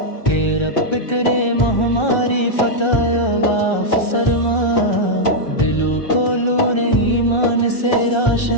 کہ رب کریم ہماری فتح غاف فرما، دلوں کو نور ایمان سے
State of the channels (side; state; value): right; late; 1.3 ms